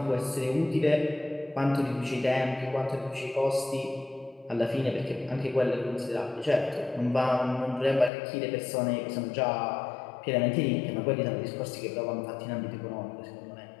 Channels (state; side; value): drops out; right; at 8.1 s